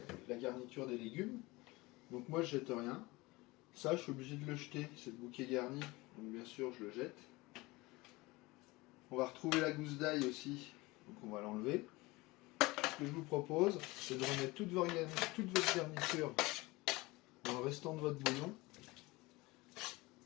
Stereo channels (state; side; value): quieter; right; 22.0 dB